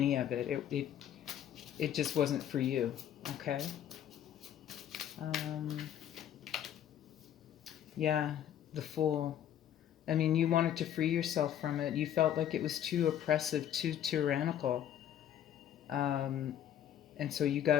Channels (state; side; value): quieter; right; 10.4 dB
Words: of it. It just wasn't for you. Okay. Yeah, the Fool. I mean, you wanted to free yourself from it. You felt like it was too oppressive, too tyrannical, and so you